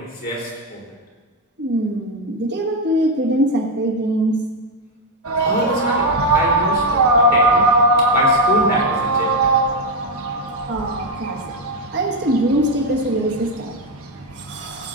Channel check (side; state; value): both; normal; correlation 0.06